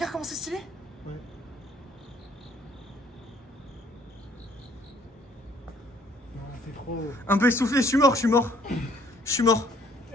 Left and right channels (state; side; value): normal; both; correlation 0.62